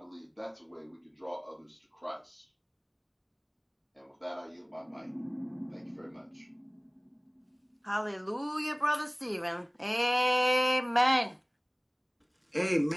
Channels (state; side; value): identical; both; correlation 1.00